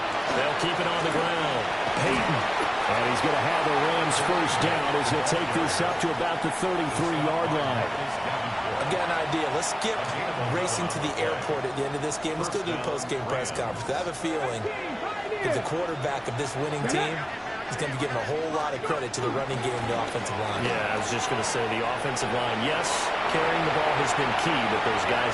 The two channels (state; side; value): identical; both; correlation 1.00